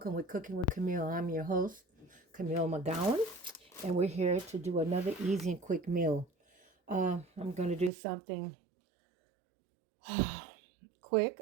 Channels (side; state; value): left; drops out; at 7.9 s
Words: with Cooking with Camille. I'm your host, Camille McGowan, and we're here to do another easy and quick meal. I'm going to do something quick.